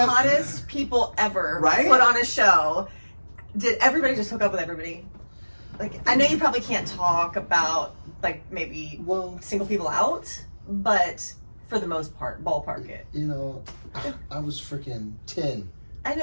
hottest people ever Right? put on a show. Did everybody just hook up with everybody? Like, I know you probably can't talk about, like, maybe Well, single people out, but for the most part, ballpark it. I was freaking 10, I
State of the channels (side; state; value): both; inverted; correlation -1.00